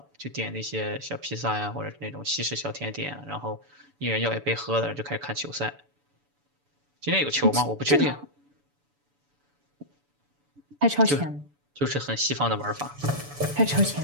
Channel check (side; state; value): left; late; 7.0 ms